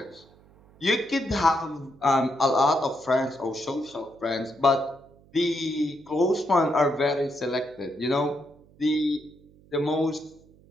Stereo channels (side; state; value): right; noise; hum, 27 dB below the sound